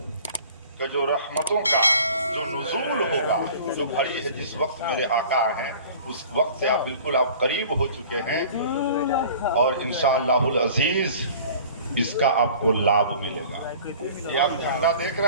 का जो रहमतों का जो नुज़ूल होगा, जो घड़ी है, जिस वक्त मेरे आका हैं उस वक्त से आप बिल्कुल आप करीब हो चुके हैं और इंशाअल्लाहुल अजीज इसका आपको लाभ मिलेगा। ये आप झंडा देख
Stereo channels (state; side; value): inverted; both; correlation -0.46